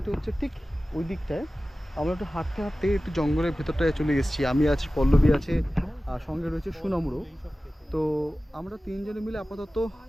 হচ্ছে ঠিক ওই দিকটায়। আমরা একটু হাঁটতে হাঁটতে একটু জঙ্গলের ভেতরটায় চলে এসেছি। আমি আছি, পল্লবী আছে, আর সঙ্গে রয়েছে সুনমরও। তো আমরা তিনজনে মিলে আপাতত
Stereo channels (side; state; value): both; normal; correlation 0.96